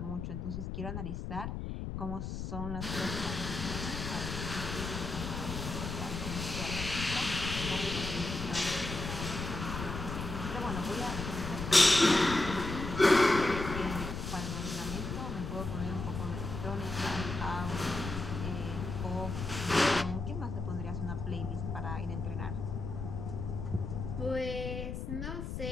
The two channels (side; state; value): left; noise; rumble, 5 dB below the sound